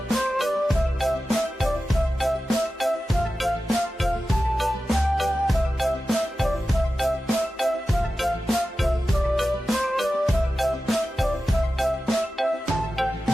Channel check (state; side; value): normal; both; correlation 0.93